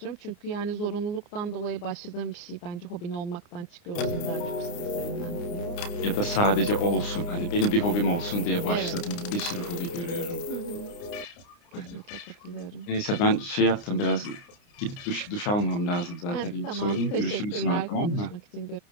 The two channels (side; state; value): right; late; 29 ms